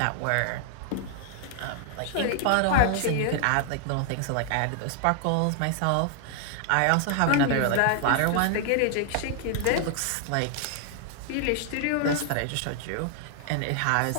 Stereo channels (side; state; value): both; different; correlation 0.00